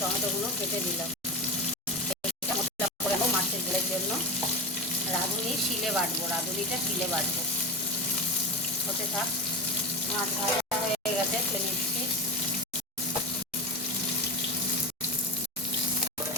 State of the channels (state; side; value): normal; both; correlation 0.23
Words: কেটে দিলাম। মশলা করে নেবো মাছের ঝোলের জন্য। রাঁধুনি শিলে বাটবো, রাঁধুনিটা শিলে বাটবো। হতে থাক। মাছ ভাজা হয়ে গেছে, তুলে নিচ্ছি।